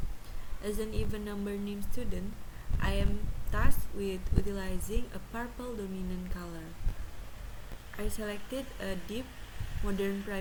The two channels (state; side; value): identical; both; correlation 1.00